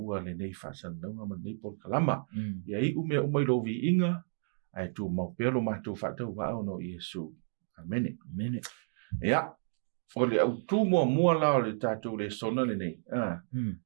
le nei whasandaunga ma nei porkalama. Ia i ume umai lo vi inga, ai tu mau pelo mātou whatau wao no Iesu. Amene. Ia, o le autu mua la o le tātou le sona le nei.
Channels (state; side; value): silent; left; digital silence